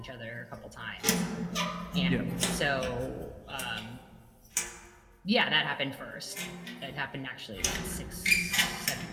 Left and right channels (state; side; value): identical; both; correlation 1.00